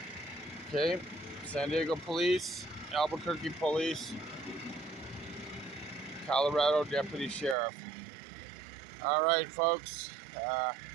Okay, San Diego Police, Albuquerque Police, Colorado Deputy Sheriff. All right, folks.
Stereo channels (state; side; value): drops out; left; at 7.6 s